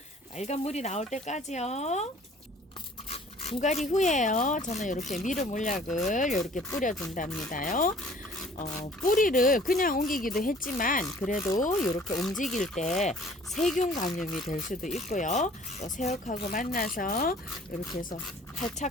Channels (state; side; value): normal; both; correlation 0.53